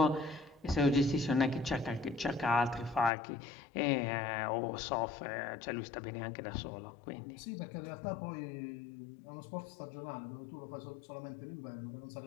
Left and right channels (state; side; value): drops out; right; at 3.1 s